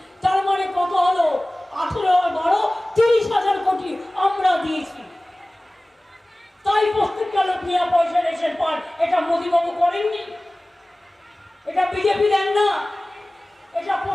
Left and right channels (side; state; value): both; normal; correlation 0.98